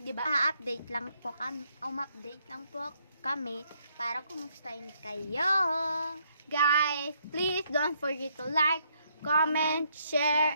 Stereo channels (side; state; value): both; inverted; correlation -0.72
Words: ba? Update lang po kami, update lang po kami para kumustahin kayo. Guys, please don't forget to like, comment, share,